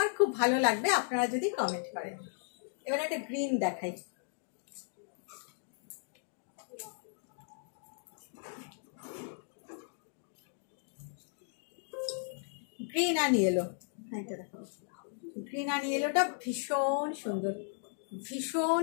খুব ভালো লাগবে আপনারা যদি কমেন্ট করেন। এবারে একটা গ্রিন দেখাই, গ্রিন অ্যান্ড ইয়েলো, এটা দেখো, গ্রিন অ্যান্ড ইয়েলোটা ভীষণ সুন্দর, ভীষণ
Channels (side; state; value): right; silent; digital silence